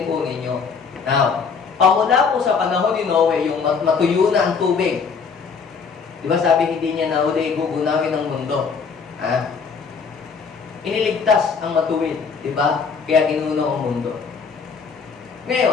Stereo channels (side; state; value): right; quieter; 5.6 dB